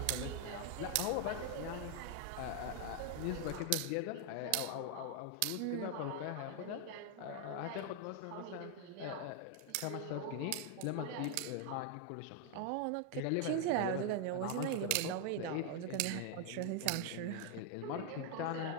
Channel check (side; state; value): both; different; correlation 0.00